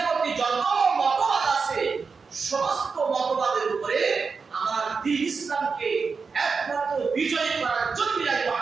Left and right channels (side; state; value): left; quieter; 5.0 dB